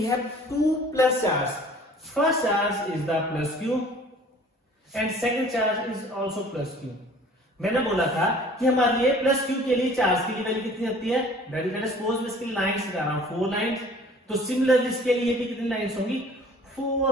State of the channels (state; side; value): normal; both; correlation 0.50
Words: have 2 plus charge. First charge is the plus q and second charge is also plus q. मैंने बोला था कि हमारे लिए प्लस q के लिए charge की value कितनी होती है, let us suppose मैं इसकी लाइंस लगा रहा हूं 4 लाइंस, तो सिमिलरली इसके लिए भी कितनी लाइंस होंगी,